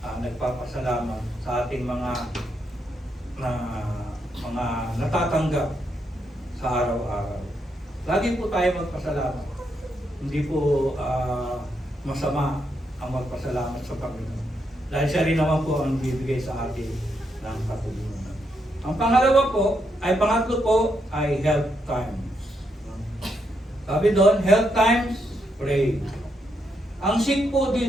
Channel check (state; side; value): normal; both; correlation 0.80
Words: nagpapasalamat sa ating mga natatanggap sa araw-araw. Lagi po tayo magpasalamat. Hindi po masama ang magpasalamat sa Panginoon. Dahil siya rin naman po ang bibigay sa atin ng katulungan. Ang pangatlo po ay health times. Sabi doon, health times, pray. Ang sick po